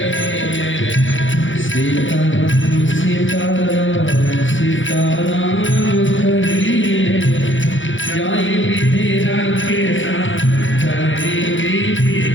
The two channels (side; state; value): right; late; 0.56 ms